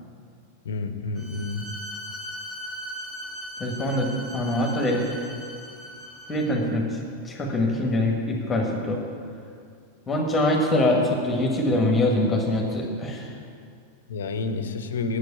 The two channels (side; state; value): both; normal; correlation 0.31